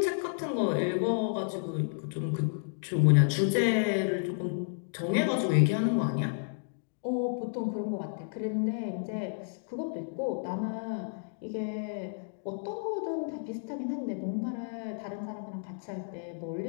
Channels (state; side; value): silent; right; digital silence